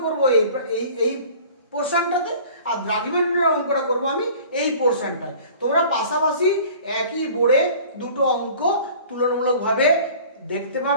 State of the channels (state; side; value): inverted; both; correlation -0.46